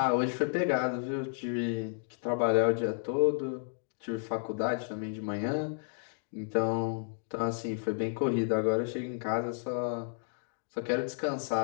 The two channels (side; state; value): right; silent; digital silence